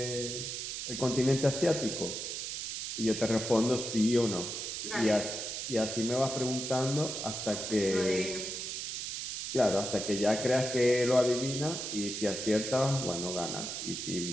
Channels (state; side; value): noise; right; hiss, 5 dB below the sound